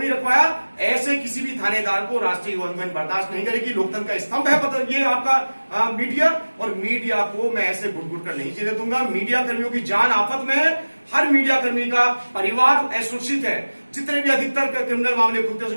रखवाया? ऐसे किसी भी थानेदार को राष्ट्रीय युवा हिंदू बर्दाश्त नहीं करेगी। लोकतंत्र का स्तंभ है ये आपका मीडिया, और मीडिया को मैं ऐसे घुट कर नहीं जीने दूंगा। मीडिया कर्मियों की जान आफत में है। हर मीडिया कर्मी का परिवार असुरक्षित है। जितने भी अधिकतर क्रिमिनल मामले खुलते हैं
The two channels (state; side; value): inverted; both; correlation -1.00